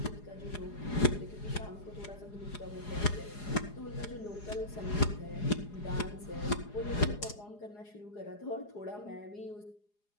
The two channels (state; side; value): late; right; 4.8 ms